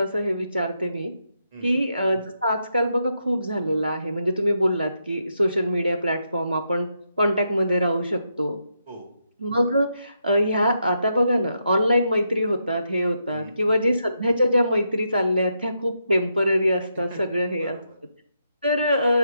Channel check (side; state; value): both; inverted; correlation -0.81